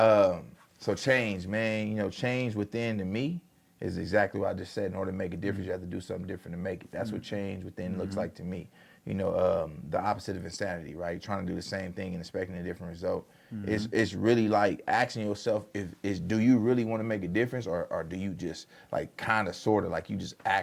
So change, man. Change within to me is exactly what I just said. In order to make a difference, you have to do something different to make it. That's what change within looks like to me. The opposite of insanity, right? Trying to do the same thing and expecting a different result. It's really like asking yourself, do you really want to make a difference, or do you just like kind of sort of like you just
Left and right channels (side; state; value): both; identical; correlation 1.00